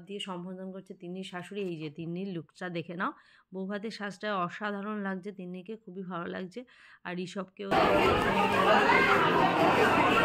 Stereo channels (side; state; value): both; identical; correlation 1.00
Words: দিয়ে সম্বোধন করছে তিন্নির শাশুড়ি। এই যে তিন্নির লুকটা দেখে নাও, বৌভাতের সাজটা অসাধারণ লাগছে, তিন্নিকে খুবই ভালো লাগছে। আর ঋষভকেও